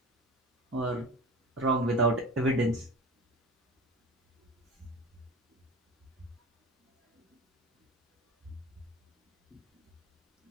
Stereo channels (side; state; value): both; normal; correlation 0.32